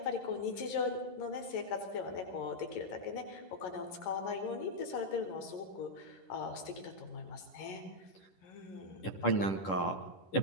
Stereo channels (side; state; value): right; late; 11 ms